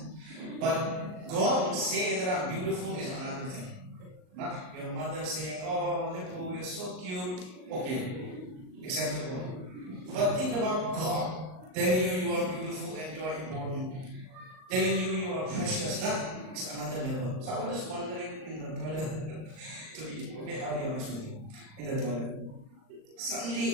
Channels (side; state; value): left; late; 38 ms